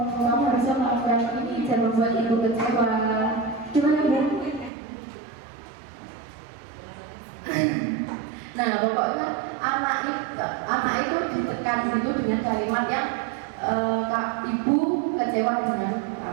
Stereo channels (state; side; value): drops out; left; at 4.7 s